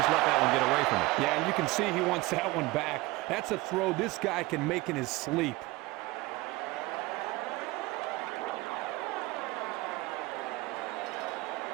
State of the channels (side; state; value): left; quieter; 21.2 dB